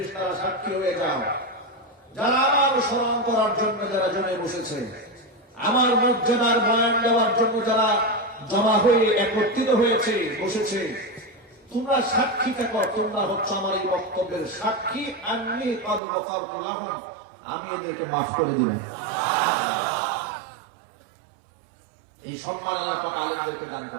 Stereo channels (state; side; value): drops out; left; at 16.0 s